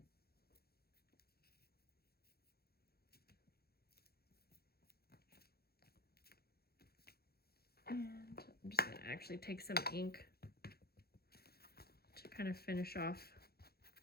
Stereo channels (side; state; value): right; late; 0.46 ms